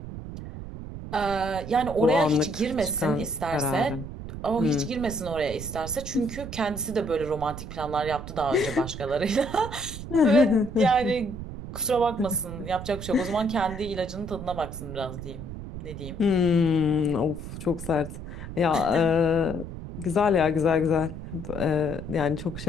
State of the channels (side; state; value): right; noise; rumble, 9 dB below the sound